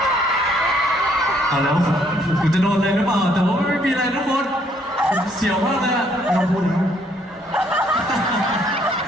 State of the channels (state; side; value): normal; both; correlation 0.67